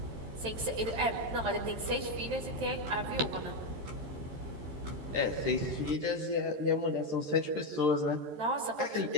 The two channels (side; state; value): left; late; 13 ms